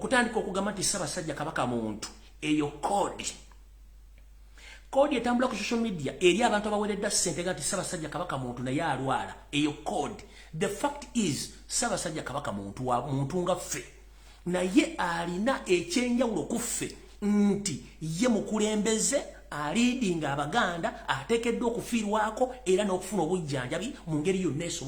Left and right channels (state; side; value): identical; both; correlation 1.00